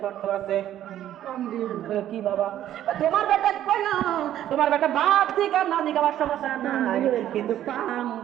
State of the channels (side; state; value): left; quieter; 11.9 dB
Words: শর্ত আছে কি বাবা? তোমার বেটা কইলো তোমার বেটা ভাত ঠিক আর না দিকে আমার সমস্যা নাই, কিন্তু পান